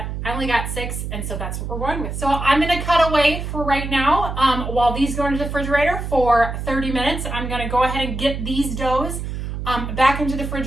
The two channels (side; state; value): right; noise; hum, 5 dB below the sound